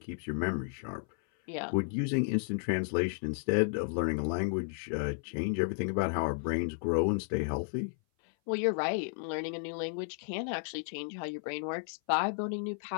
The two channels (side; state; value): right; silent; 56 dB below the other